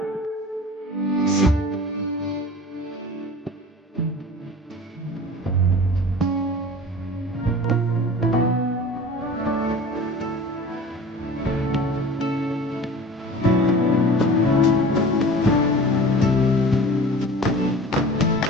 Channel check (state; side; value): normal; both; correlation 0.40